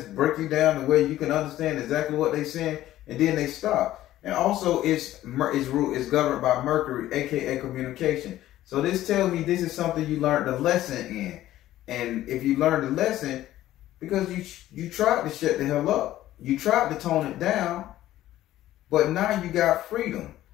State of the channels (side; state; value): right; quieter; 14.1 dB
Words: break you down the way you can understand exactly what they saying, and then they stop. And also, it's governed by Mercury, aka communication. So this tells me this is something you learned the lesson in. And if you learned the lesson, because you tried to shut the hell up. you tried to tone it down, but now you got freedom.